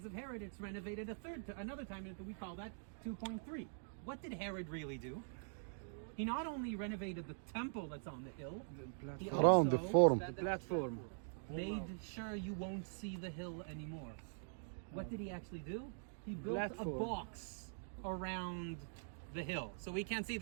of Herod, it's renovated another time, and we call that 2.3. What did Herod really do? He not only renovated the temple that's on the hill, he Around the forum. Platform. made sure you won't see the hill anymore. What did he actually do? He built a box around the hill, so we can't see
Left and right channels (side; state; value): left; silent; digital silence